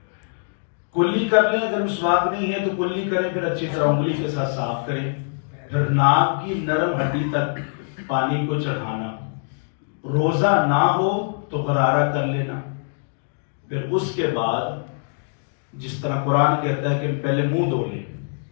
कुल्ली कर लें, अगर मिसवाक नहीं है तो कुल्ली करें, फिर अच्छी तरह उंगली के साथ साफ करें। फिर नाक की नरम हड्डी तक पानी को चढ़ाना, रोजा ना हो तो गरारा कर लेना। फिर उसके बाद जिस तरह कुरान कहता है कि पहले मुंह धो लें,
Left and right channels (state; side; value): silent; right; digital silence